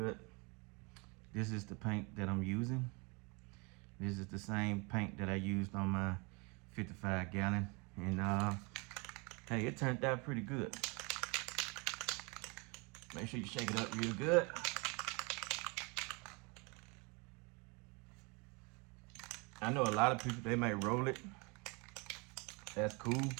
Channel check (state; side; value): quieter; left; 30.0 dB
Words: This is the paint that I'm using. This is the same paint that I used on my 55-gallon, and hey, it turned out pretty good. Make sure you shake it up real good. I know a lot of people, they might roll it. That's cool.